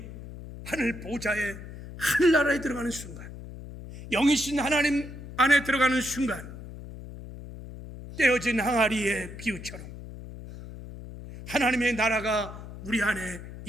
하늘 보좌에 하늘나라에 들어가는 순간, 영이신 하나님 안에 들어가는 순간 떼어진 항아리의 비유처럼 하나님의 나라가 우리 안에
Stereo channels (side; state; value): left; noise; hum, 13 dB below the sound